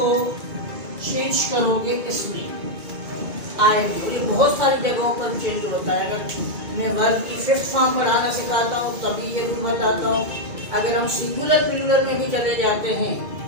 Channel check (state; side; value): late; left; 2.3 ms